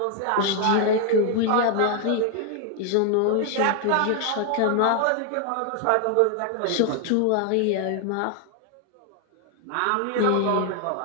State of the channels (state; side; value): different; both; correlation 0.00